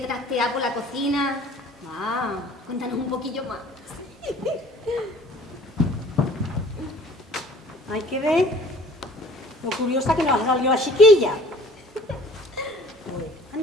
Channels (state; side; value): normal; both; correlation 0.51